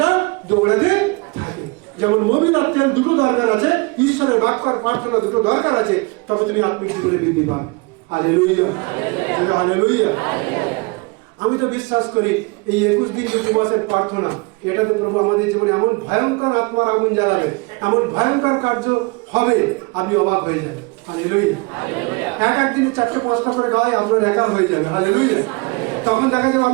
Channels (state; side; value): quieter; left; 27.6 dB